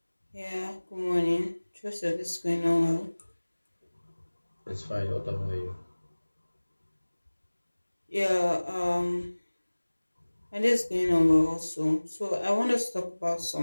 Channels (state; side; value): inverted; both; correlation -1.00